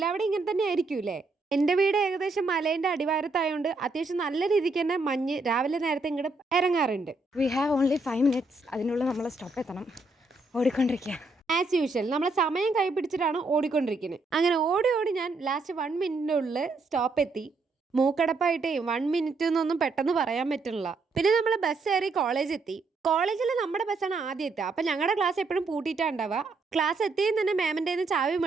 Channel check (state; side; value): quieter; left; 3.5 dB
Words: ഇങ്ങനെ തന്നെ ആയിരിക്കും അല്ലേ. എൻ്റെ വീട് ഏകദേശം മലേൻ്റെ അടിവാരത്തായതുകൊണ്ട് അത്യാവശ്യം നല്ല രീതിക്ക് തന്നെ മഞ്ഞ് രാവിലെ നേരത്തെ ഇങ്ങോട്ട് ഇറങ്ങാറുണ്ട്. We have only 5 minutes. അതിനുള്ളിൽ നമ്മൾ സ്റ്റോപ്പ് എത്തണം. ഓടിക്കൊണ്ടിരിക്കുക ആസ് യൂഷ്വൽ. നമ്മളെ സമയം കൈ പിടിച്ചിട്ടാണ് ഓടിക്കൊണ്ടിരിക്കുന്നത്. അങ്ങനെ ഓടി ഓടി ഞാൻ ലാസ്റ്റ് 1 minute ഉള്ളിൽ സ്റ്റോപ്പ് എത്തി. മൂക്കടപ്പായിട്ടേ 1 minute എന്നൊന്നും പെട്ടെന്ന് പറയാൻ പറ്റുന്നില്ല. പിന്നെ നമ്മൾ ബസ് കയറി കോളേജ് എത്തി. കോളേജിൽ നമ്മുടെ ബസ്സാണ് ആദ്യം എത്തുക. അപ്പം ഞങ്ങളുടെ ക്ലാസ് എപ്പോഴും പൂട്ടിയിട്ടാണ് ഉണ്ടാവുക. ക്ലാസ് എത്തിയും തന്നെ മാമിൻ്റെ ചാവി